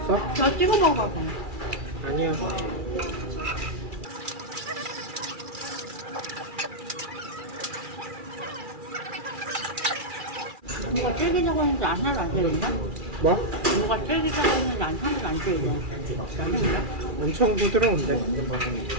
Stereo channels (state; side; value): late; left; 2.4 ms